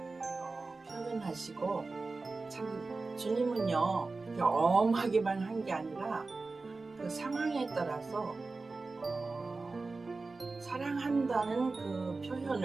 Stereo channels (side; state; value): left; quieter; 3.7 dB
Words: 표현하시고, 참 주님은요 이렇게 엄하게만 한 게 아니라 그 상황에 따라서 사랑한다는 그